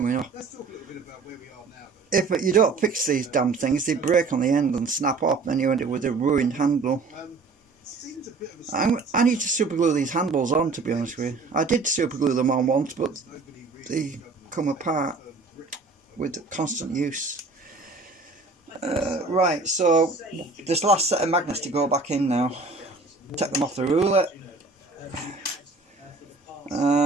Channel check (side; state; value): left; quieter; 3.9 dB